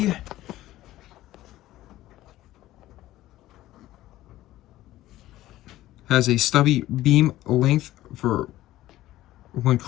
Has a stubby beam length for when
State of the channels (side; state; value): right; quieter; 15.3 dB